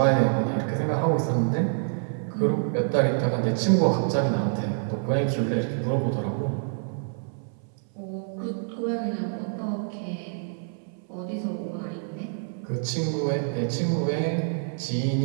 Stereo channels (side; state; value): left; silent; 60 dB below the other